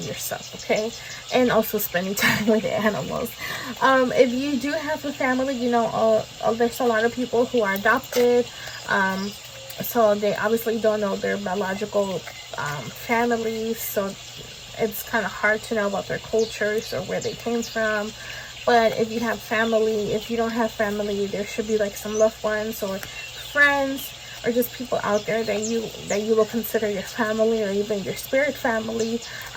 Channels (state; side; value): identical; both; correlation 1.00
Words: yourself, okay? And also spending time with the animals. If you do have a family, you know, there's a lot of people who are adopted, so they obviously don't know their biological families, so it's kind of hard to know about their cultures or where they came from. But if you have family, if you don't have family, there should be, like, some loved ones or friends or just people out there that you will consider your family or even your spirit family,